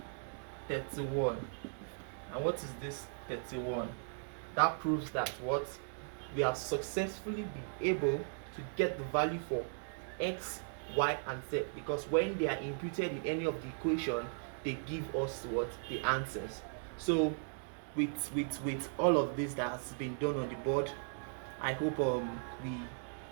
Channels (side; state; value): left; silent; digital silence